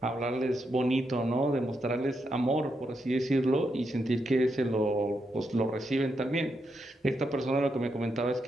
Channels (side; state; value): both; normal; correlation 0.82